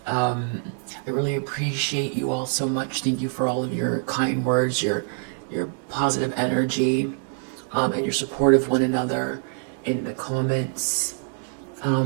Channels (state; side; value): silent; left; 56 dB below the other